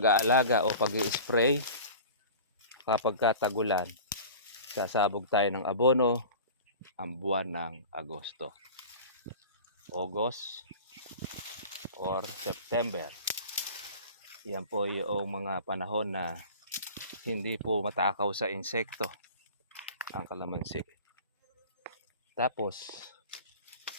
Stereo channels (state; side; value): inverted; both; correlation -0.38